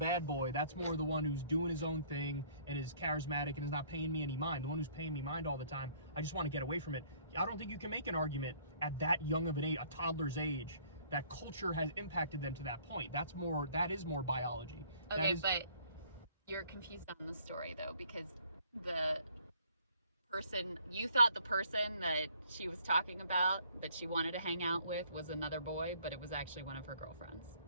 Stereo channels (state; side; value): inverted; both; correlation -0.59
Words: boy. That's more of the one who's doing his own thing and is charismatic and is not paying me any mind. The one who's paying me mind all the time, I just want to get away from it. I don't think you can make an argument at that young of an age, a toddler's age, that culture has impacted them to that point. That is more biology. Okay, but you're confused on the story though, because you thought the person that she was talking about that she wanted to hang out with was another boy, but it was actually one of her girlfriends.